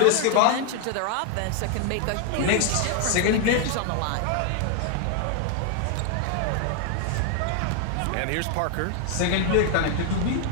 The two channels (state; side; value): different; both; correlation 0.00